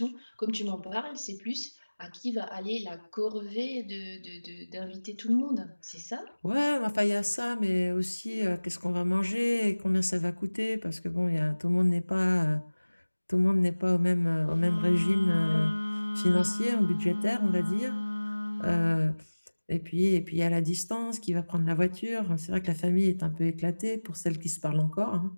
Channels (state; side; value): inverted; both; correlation -1.00